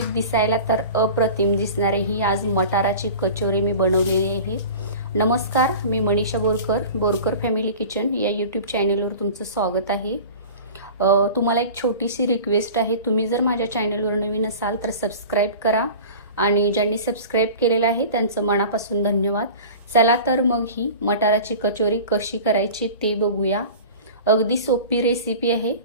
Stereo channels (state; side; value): inverted; both; correlation -0.38